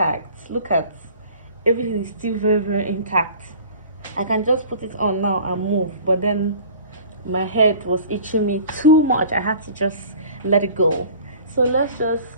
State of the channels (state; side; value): inverted; both; correlation -0.45